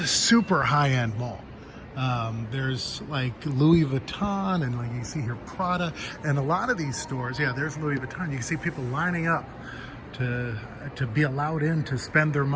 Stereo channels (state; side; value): identical; both; correlation 1.00